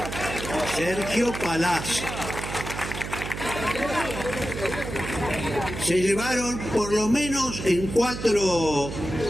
Sergio Palazzo. Se llevaron por lo menos en 4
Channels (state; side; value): noise; right; hum, 7 dB below the sound